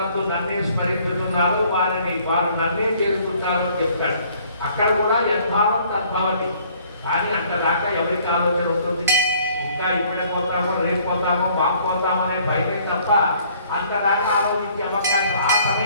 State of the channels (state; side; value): inverted; both; correlation -0.60